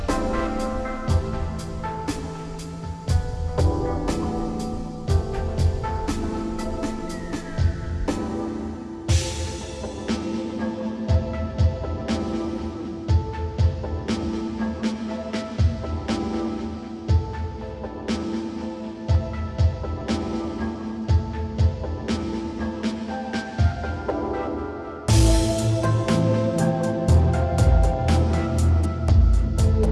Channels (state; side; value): identical; both; correlation 1.00